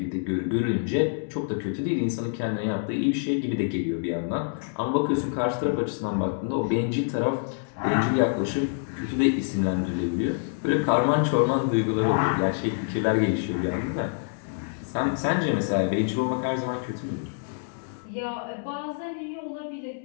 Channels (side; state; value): right; silent; 61 dB below the other